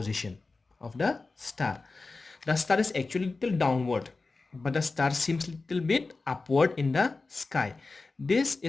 of the star. The star is actually little downward, but the star seems little bit upward in the sky. This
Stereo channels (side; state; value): right; quieter; 3.7 dB